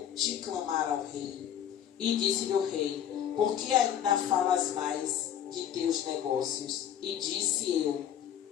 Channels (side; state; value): right; quieter; 9.8 dB